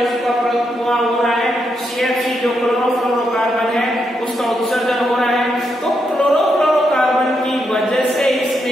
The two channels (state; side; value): normal; both; correlation 0.81